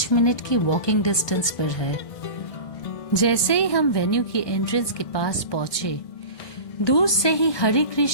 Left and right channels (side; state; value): right; late; 1.2 ms